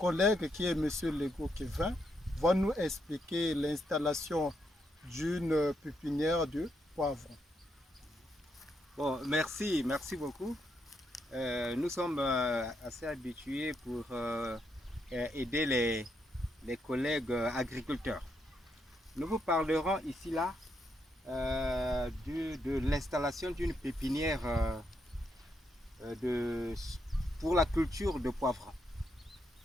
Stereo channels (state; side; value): normal; both; correlation 0.79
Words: qui est Monsieur Lego Kevin va nous expliquer l'installation d'une pépinière de poivrons. Bon, merci beaucoup. Nous sommes assez habitués pour aider les collègues agriculteurs. Nous vous parlerons ici là de l'installation d'une pépinière de, pour la culture de poivrons.